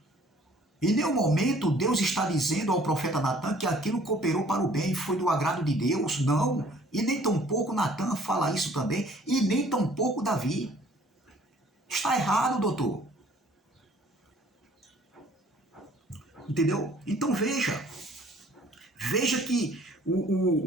em nenhum momento Deus está dizendo ao profeta Natã que aquilo cooperou para o bem, foi do agrado de Deus, não. E nem tampouco Natã fala isso também, e nem tampouco Davi. Está errado, doutor. Entendeu? Então veja que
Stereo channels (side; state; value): both; normal; correlation 0.56